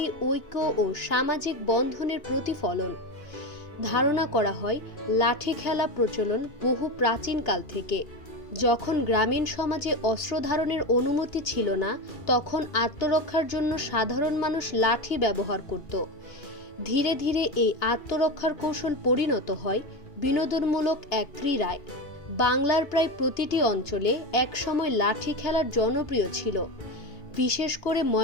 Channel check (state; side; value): late; right; 2.8 ms